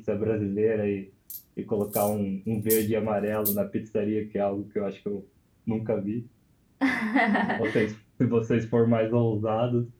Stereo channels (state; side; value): identical; both; correlation 1.00